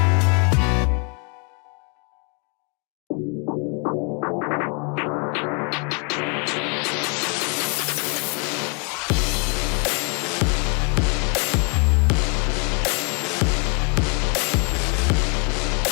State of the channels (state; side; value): quieter; right; 35.8 dB